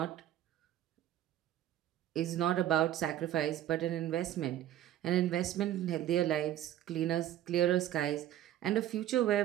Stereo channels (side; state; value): left; quieter; 12.2 dB